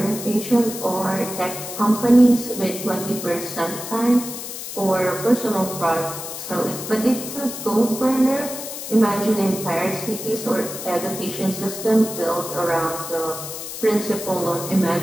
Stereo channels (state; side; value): noise; left; hiss, 8 dB below the sound